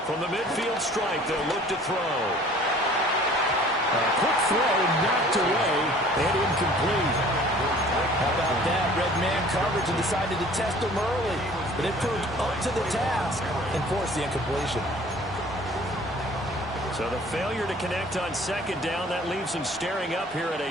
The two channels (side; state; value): both; normal; correlation 0.50